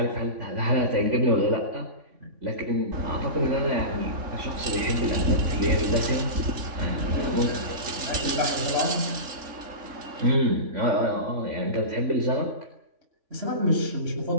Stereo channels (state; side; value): late; left; 3.5 ms